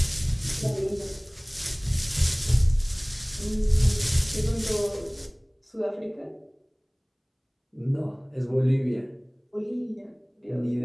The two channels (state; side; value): identical; both; correlation 1.00